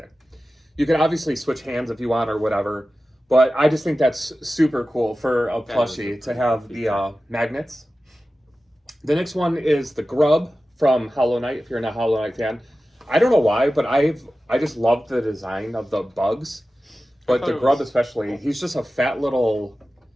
You can obviously switch hands if you want or whatever, but I just think that's super cool for a plushie to have the magnets. The next one is the Grub from Hollow Knight, if you're not a Hollow Knight fan. I don't know why, but I just love the design of the bugs, but the Grub especially. He's just a fat little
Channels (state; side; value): normal; both; correlation 0.95